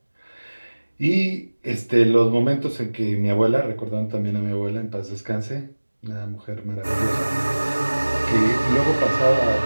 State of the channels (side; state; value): both; inverted; correlation -1.00